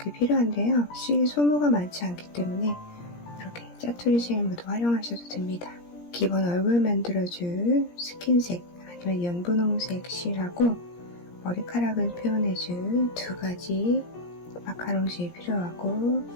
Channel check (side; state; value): right; late; 17 ms